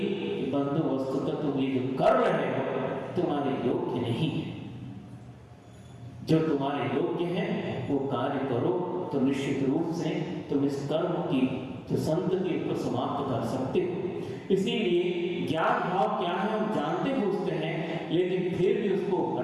बंधु वस्तुतः तुम ये जो कर रहे हो तुम्हारे योग्य नहीं है। जो तुम्हारे योग्य है वो कार्य करो तो निश्चित रूप से तुम इस कर्म की जो संत के ऊपर समाप्त कर सकते हो। इसीलिए ज्ञान भाव क्या है हम जानते बूझते हैं, लेकिन फिर भी उसको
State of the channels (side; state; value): both; identical; correlation 1.00